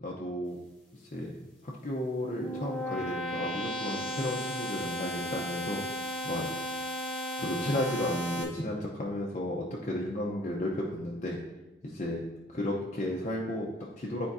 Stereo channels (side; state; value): both; normal; correlation 0.54